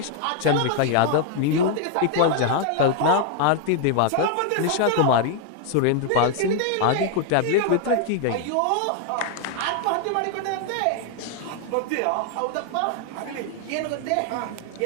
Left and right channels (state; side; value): different; both; correlation 0.00